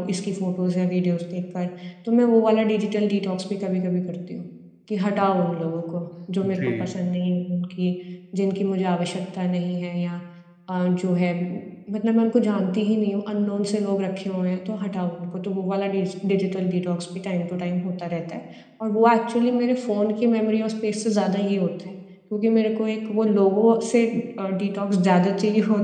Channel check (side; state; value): both; identical; correlation 1.00